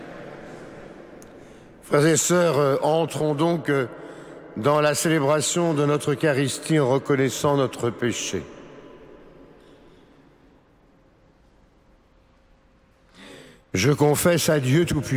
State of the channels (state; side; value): identical; both; correlation 1.00